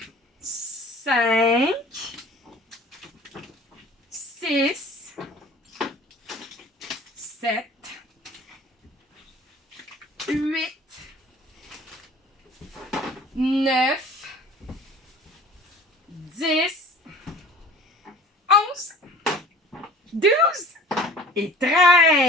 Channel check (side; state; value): both; normal; correlation 0.45